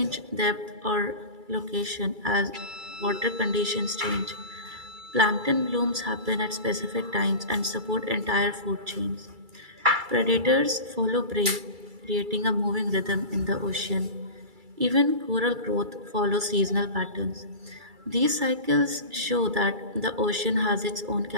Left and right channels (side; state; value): left; late; 2.3 ms